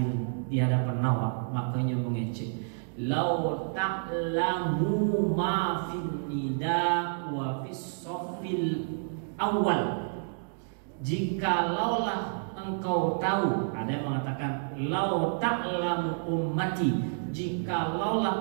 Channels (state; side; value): silent; left; digital silence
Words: awak, makanya mengecek lau ta'lamu ma fin nida wa fis safil awal. Jikalaulah engkau tahu, ada yang mengatakan lau ta'lamu ummati,